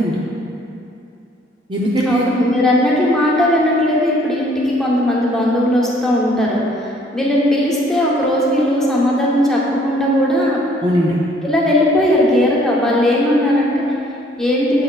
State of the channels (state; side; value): normal; both; correlation 0.61